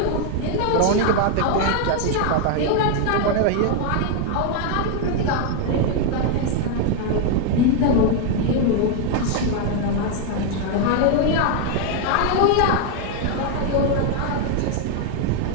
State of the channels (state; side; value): different; both; correlation 0.01